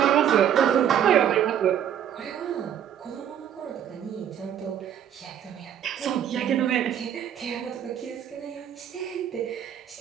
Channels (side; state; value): left; quieter; 9.6 dB